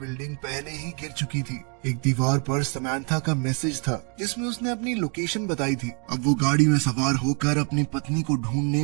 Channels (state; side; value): quieter; left; 38.4 dB